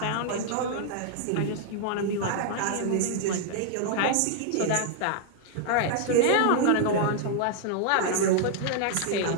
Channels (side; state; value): both; different; correlation -0.01